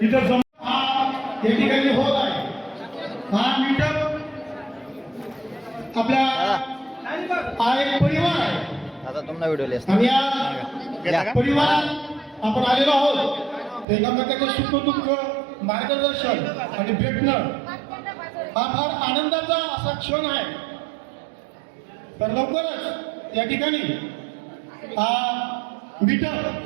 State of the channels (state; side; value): drops out; left; at 13.9 s